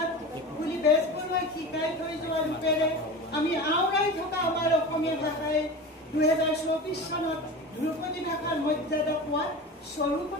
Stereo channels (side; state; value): both; normal; correlation 0.30